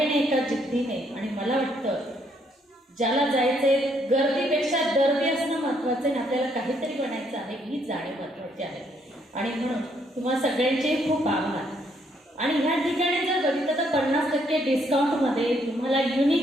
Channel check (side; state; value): both; normal; correlation 0.71